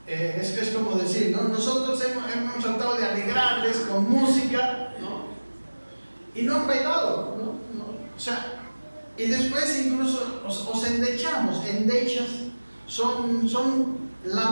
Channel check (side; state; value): both; inverted; correlation -1.00